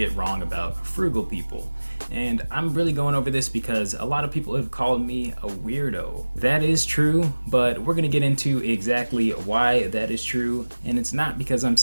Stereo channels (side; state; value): both; inverted; correlation -1.00